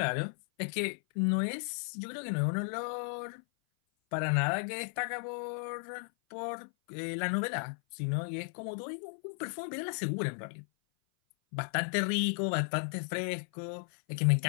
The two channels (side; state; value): right; silent; 55 dB below the other